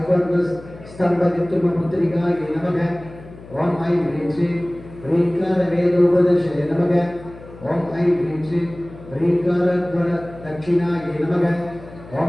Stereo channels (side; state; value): left; noise; hum, 18 dB below the sound